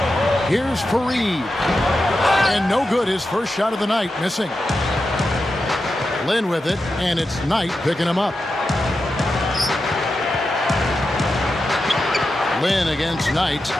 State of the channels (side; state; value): both; normal; correlation 0.90